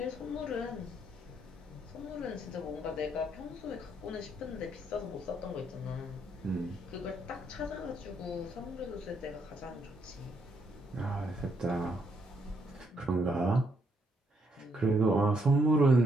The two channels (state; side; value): normal; both; correlation 0.74